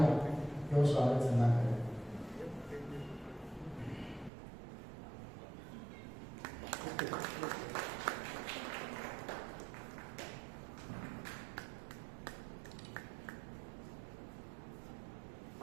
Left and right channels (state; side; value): drops out; left; at 4.3 s